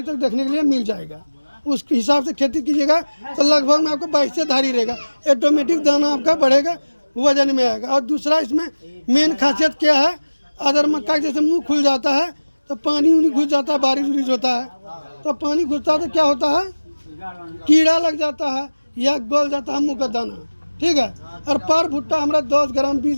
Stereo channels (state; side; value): inverted; both; correlation -1.00